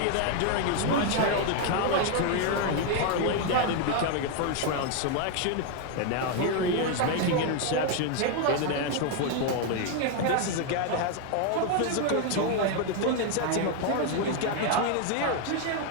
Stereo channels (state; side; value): different; both; correlation 0.01